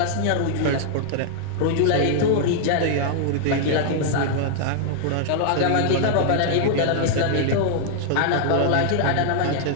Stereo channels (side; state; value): both; different; correlation -0.01